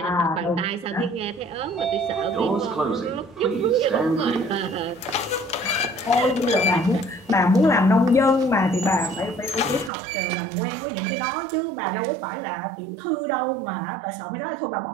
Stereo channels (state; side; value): drops out; left; at 9.9 s